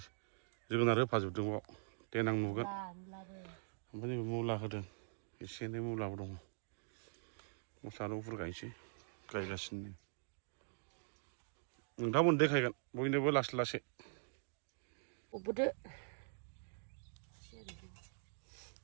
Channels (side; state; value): left; silent; digital silence